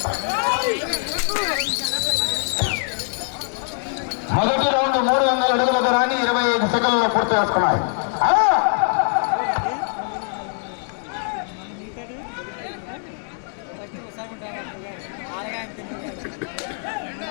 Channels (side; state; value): right; silent; 64 dB below the other